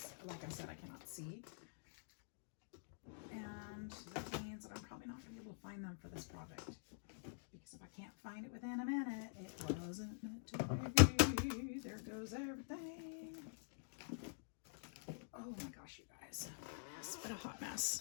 like I said, I cannot see. And that means that I'm probably not going to be able to find them for this project. Because if I can't find it within a minute, it wasn't meant to be. There goes everything. Oh my gosh, you guys. It's been a hot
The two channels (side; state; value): right; silent; digital silence